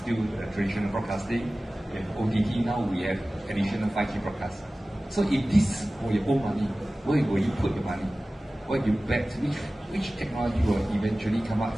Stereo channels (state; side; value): normal; both; correlation 0.97